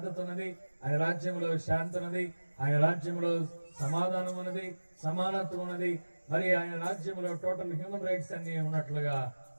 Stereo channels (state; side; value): inverted; both; correlation -1.00